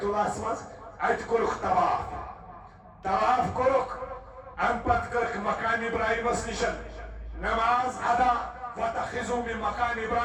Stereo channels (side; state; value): both; identical; correlation 1.00